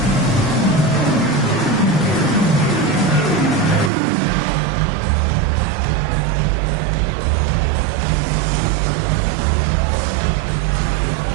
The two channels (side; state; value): left; drops out; at 3.9 s